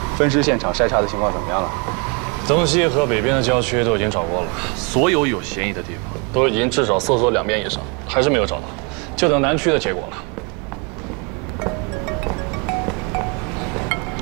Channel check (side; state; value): left; quieter; 32.8 dB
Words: 分尸现场筛查的情况怎么样了？东西和北边的郊区都已经找过了，所有有嫌疑的地方都已经至少搜索2遍以上，还是没有找到，就等南区的结果了。